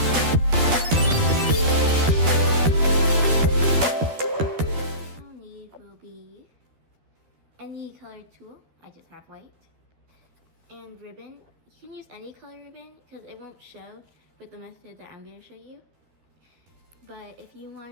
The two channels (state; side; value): late; left; 12 ms